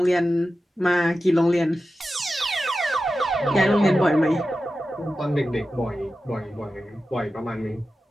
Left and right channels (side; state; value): both; normal; correlation 0.93